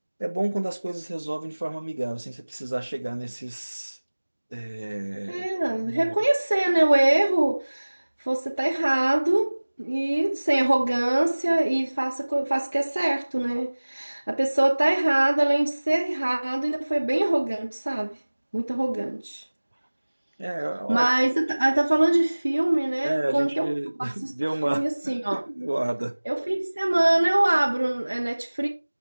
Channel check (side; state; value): both; inverted; correlation -1.00